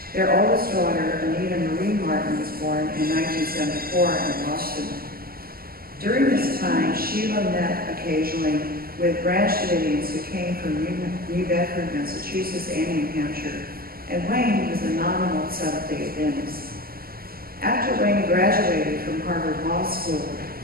Their oldest daughter, Anita Marie Martin, was born in 1974 in Boston. During this time, Sheila met occasionally with Branch Davidians who came from New Bedford, Massachusetts, and New Hampshire, and Wayne was a nominal Seventh-day Adventist. After Wayne graduated from Harvard Law School,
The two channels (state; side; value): late; left; 0.43 ms